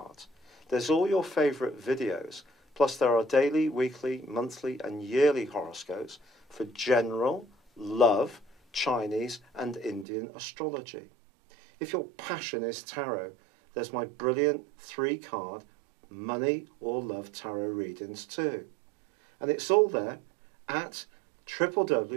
There's all your favourite videos, plus there are daily, weekly, monthly and yearly horoscopes for general, love, Chinese and Indian astrology. If your passion is tarot, there's my brilliant 3-card money or love tarot readings too. And it's all there at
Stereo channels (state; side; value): drops out; left; at 10.1 s